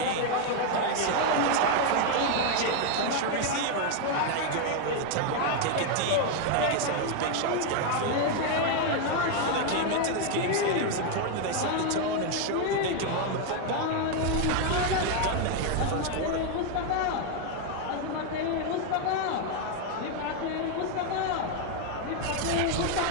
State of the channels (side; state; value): both; different; correlation 0.01